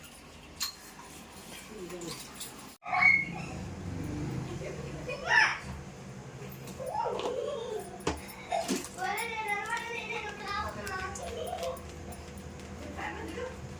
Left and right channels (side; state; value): both; identical; correlation 1.00